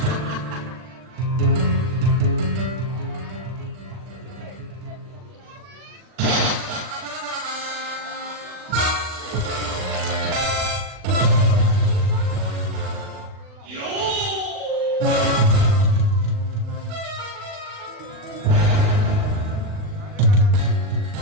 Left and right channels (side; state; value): left; late; 39 ms